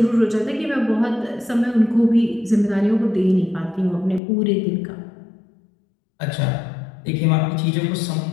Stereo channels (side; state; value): right; drops out; at 4.2 s